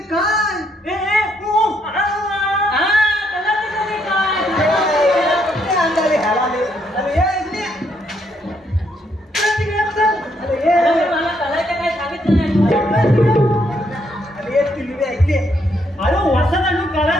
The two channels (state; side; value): normal; both; correlation 0.74